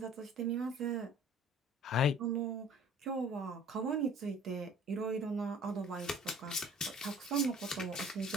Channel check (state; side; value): normal; both; correlation 0.49